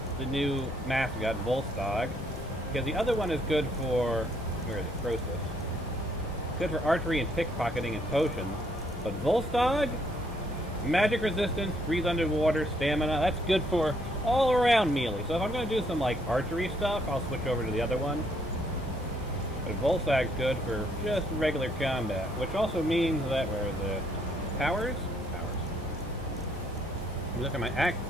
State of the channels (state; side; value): normal; both; correlation 0.69